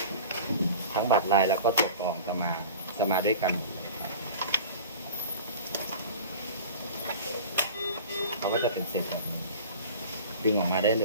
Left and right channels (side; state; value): both; inverted; correlation -0.38